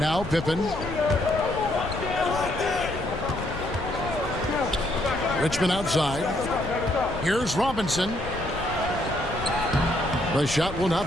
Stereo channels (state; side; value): noise; left; rumble, 10 dB below the sound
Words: Pippen. Richmond outside. Here's Robinson. The shot will